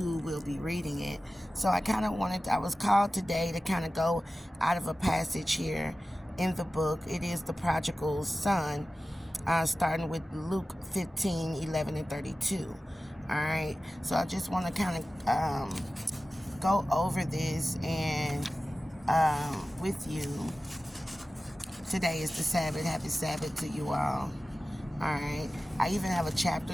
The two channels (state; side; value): normal; both; correlation 0.96